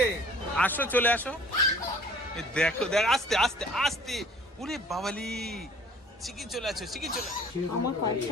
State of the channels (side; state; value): both; normal; correlation 0.51